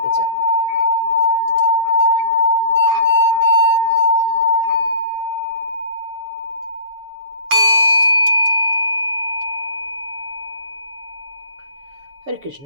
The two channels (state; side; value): late; left; 7.1 ms